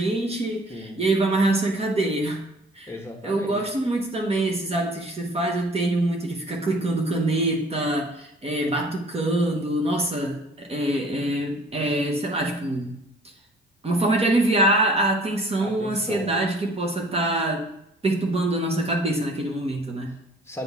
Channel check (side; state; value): both; normal; correlation 0.52